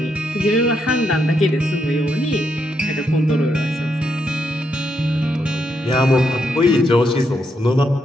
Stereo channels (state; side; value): normal; both; correlation 0.79